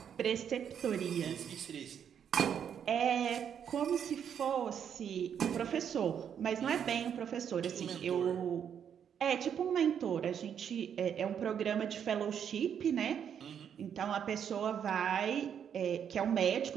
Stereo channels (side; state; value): left; quieter; 8.3 dB